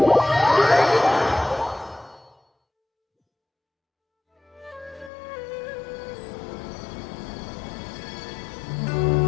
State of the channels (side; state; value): right; drops out; at 5.1 s